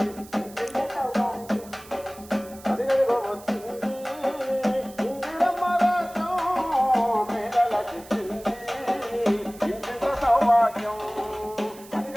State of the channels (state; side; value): noise; right; hiss, 20 dB below the sound